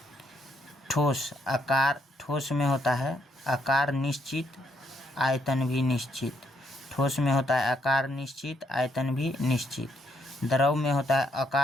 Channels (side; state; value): both; normal; correlation 0.73